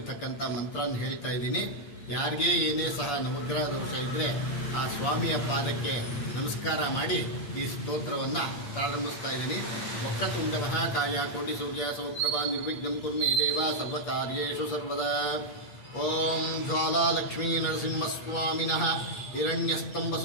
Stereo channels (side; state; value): right; late; 8.4 ms